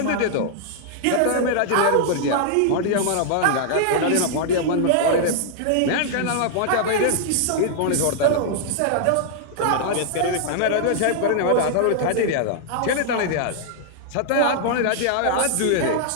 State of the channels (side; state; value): both; different; correlation -0.01